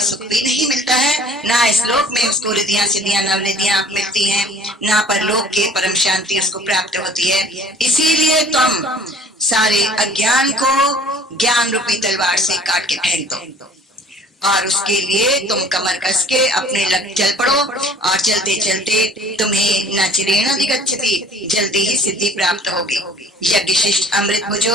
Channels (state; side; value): normal; both; correlation 0.51